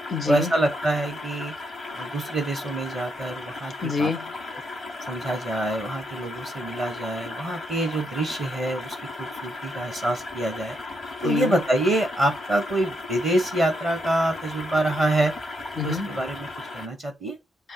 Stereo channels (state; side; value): normal; both; correlation 0.78